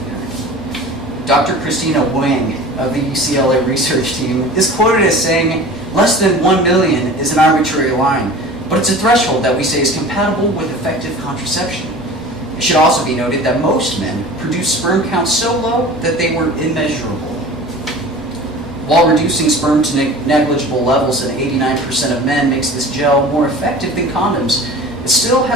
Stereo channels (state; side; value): normal; both; correlation 0.39